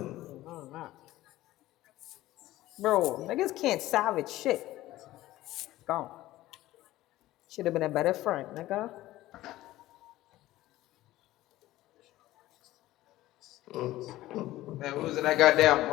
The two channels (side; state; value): right; quieter; 16.1 dB